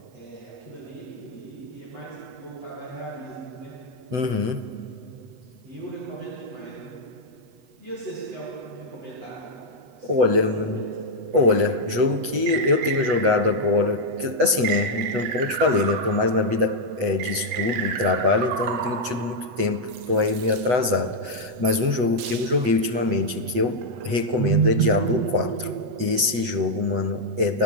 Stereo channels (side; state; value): left; late; 8.1 ms